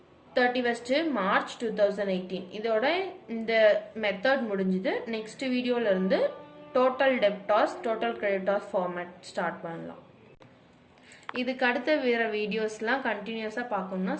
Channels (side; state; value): both; identical; correlation 1.00